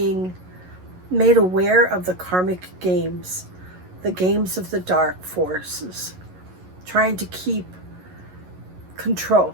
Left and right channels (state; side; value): late; left; 11 ms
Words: made aware of the karmic games, the games of the dark forces, trying to keep control.